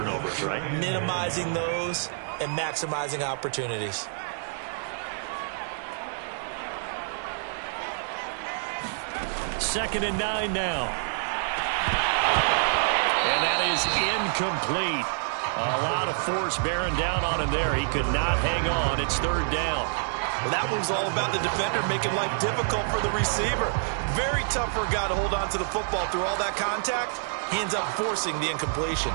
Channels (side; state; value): left; silent; digital silence